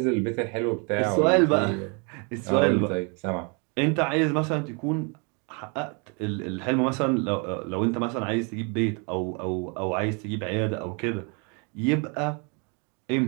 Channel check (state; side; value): quieter; left; 34.7 dB